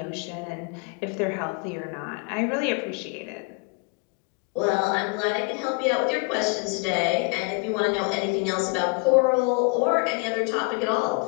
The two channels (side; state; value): right; quieter; 30.9 dB